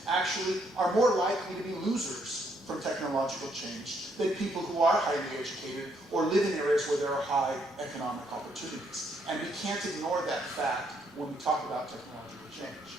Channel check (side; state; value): both; normal; correlation 0.72